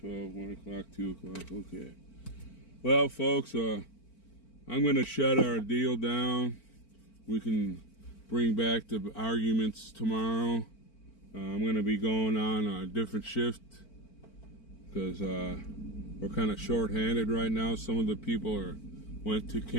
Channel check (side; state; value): right; late; 4.5 ms